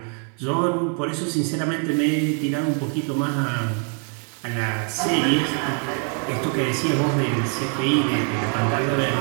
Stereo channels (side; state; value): left; quieter; 37.9 dB